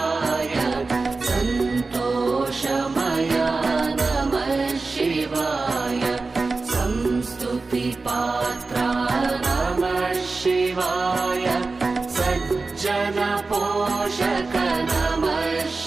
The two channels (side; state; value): left; quieter; 3.8 dB